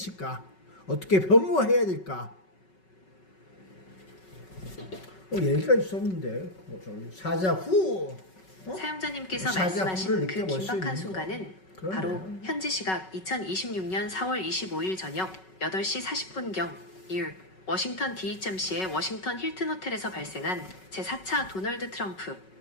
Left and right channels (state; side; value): late; right; 5.3 ms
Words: 어떻게 변모해야 될까? 얘기가 있었는데 사자 후 사용자님께서 말씀하신 그 긴박한 순간은 바로 현지 시각 2026년 4월 25일 저녁 8시 40분경 워싱턴 DHMC의 워싱턴 힐튼 호텔에서 발생한 제4차 도널드 트럼프